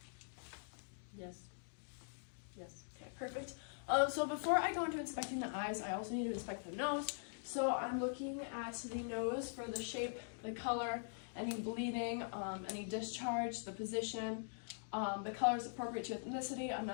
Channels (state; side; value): silent; right; digital silence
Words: Yes. Yes. Okay, perfect. So before I go into inspecting the eyes, I also need to inspect the nose. So I'm looking at the nose for the shape, the color, any bleeding, any discharge, the position. The color is appropriate to ethnicity. I'm